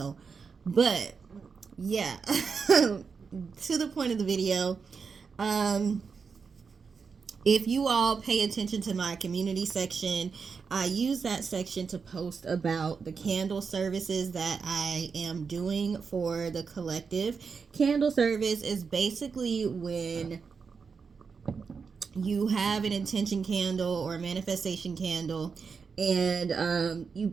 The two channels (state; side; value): quieter; left; 5.5 dB